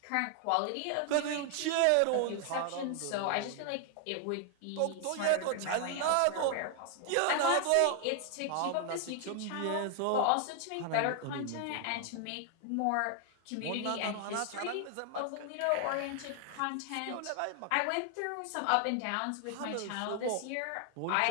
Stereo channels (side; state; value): both; different; correlation 0.00